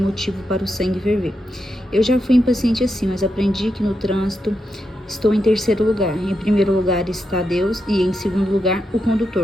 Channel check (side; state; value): both; normal; correlation 0.85